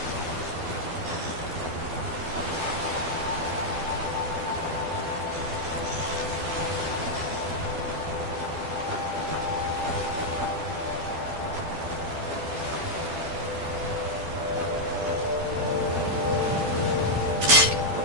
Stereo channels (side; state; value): left; late; 12 ms